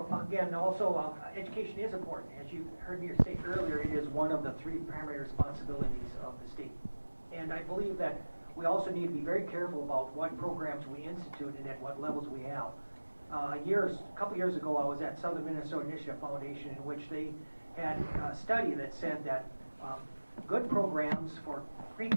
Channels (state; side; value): inverted; both; correlation -1.00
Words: Again, also, education is important. As you heard me say earlier, it is one of the 3 primary responsibilities of the state. And I believe that we also need to be very careful about what programs we institute and at what levels we have. A couple years ago, I was at Southern Minnesota Initiative Foundation, in which they had a study that said that good programs for